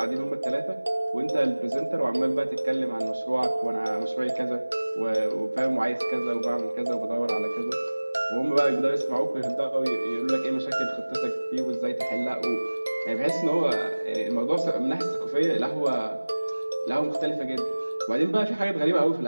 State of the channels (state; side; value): inverted; both; correlation -1.00